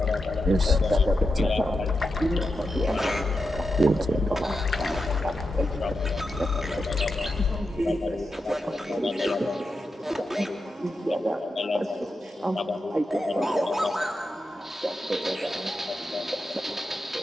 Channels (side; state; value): both; normal; correlation 0.88